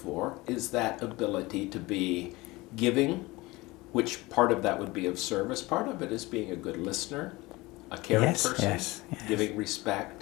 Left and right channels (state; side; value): quieter; right; 21.6 dB